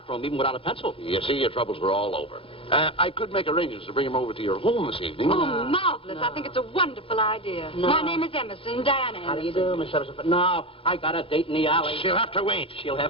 even without a pencil. You see, your troubles were all over. I could make arrangements to bring him over to your home this evening. Oh, marvelous. I think it's a wonderful idea. No. My name is Emerson, Diana Emerson. How do you do, Miss Emerson? But no, I got a date in the alley. She'll have to wait. She'll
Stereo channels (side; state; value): right; late; 0.27 ms